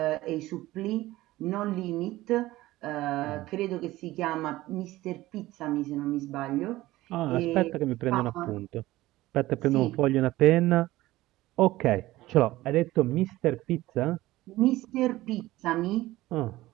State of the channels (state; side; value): quieter; left; 17.2 dB